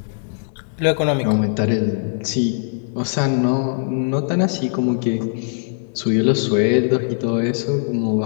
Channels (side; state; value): right; silent; digital silence